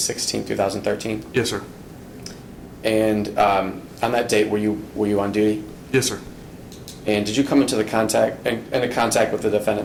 2013? Yes, sir. And on that date, were you on duty? Yes, sir. And did you come into contact with the defendant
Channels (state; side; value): identical; both; correlation 1.00